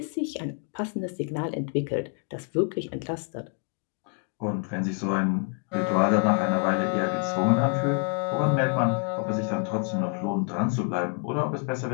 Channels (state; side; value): quieter; right; 38.7 dB